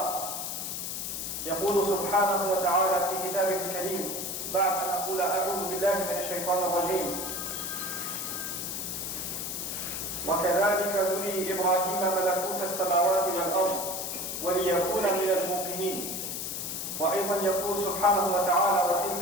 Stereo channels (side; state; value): left; noise; hiss, 4 dB below the sound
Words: يقول سبحانه وتعالى في كتابه الكريم بعد أن أقول أعوذ بالله من الشيطان الرجيم: وكذلك نري إبراهيم ملكوت السماوات والأرض وليكون من الموقنين. وأيضا يقول سبحانه وتعالى: